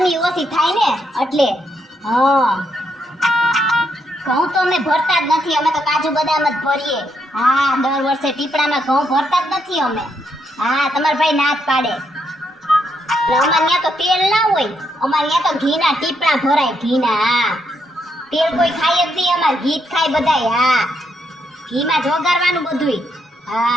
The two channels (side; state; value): both; normal; correlation 0.78